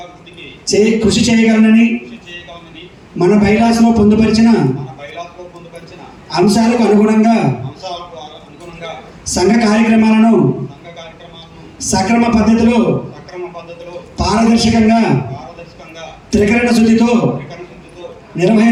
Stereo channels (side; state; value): both; identical; correlation 1.00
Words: కృషి చేయగలనని మన బైలాస్లో పొందుపరిచిన అంశాలకు అనుగుణంగా సంఘ కార్యక్రమాలను సక్రమ పద్ధతిలో పారదర్శకంగా త్రికరణ శుద్ధితో